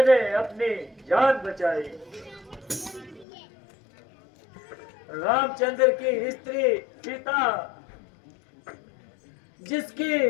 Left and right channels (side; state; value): right; drops out; at 3.2 s